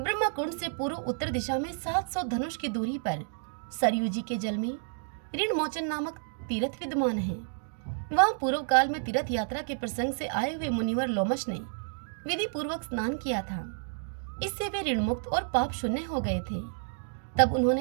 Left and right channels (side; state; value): left; silent; digital silence